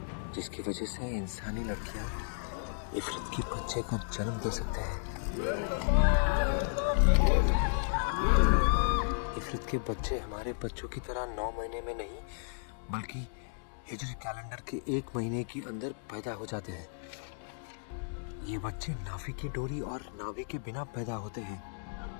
जिसकी वजह से इंसानी लड़कियां इफरत के बच्चे को जन्म दे सकते हैं। इफरत के बच्चे हमारे बच्चों की तरह 9 महीने में नहीं, बल्कि हिजरी कैलेंडर के 1 महीने के अंदर पैदा हो जाते हैं। ये बच्चे नाभि की डोरी और नाभि के बिना पैदा होते हैं।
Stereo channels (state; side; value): silent; right; digital silence